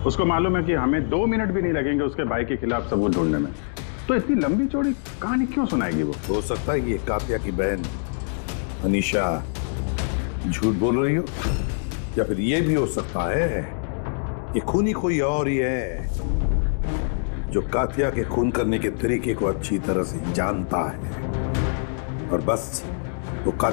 उसको मालूम है कि हमें 2 मिनट भी नहीं लगेंगे उसके भाई के खिलाफ सबूत ढूंढने में, तो इतनी लंबी चौड़ी कहानी क्यों सुनाएगी वो? हो सकता है कि ये कात्या की बहन अनीशा झूठ बोल रही हो, या फिर ये भी हो सकता है कि खूनी कोई और ही है जो कात्या के खून करने के तरीके को अच्छी तरह से जानता है और बस वो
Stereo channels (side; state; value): right; silent; digital silence